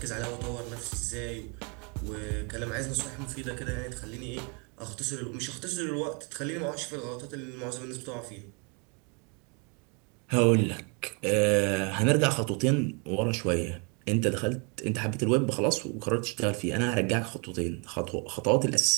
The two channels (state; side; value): quieter; left; 34.1 dB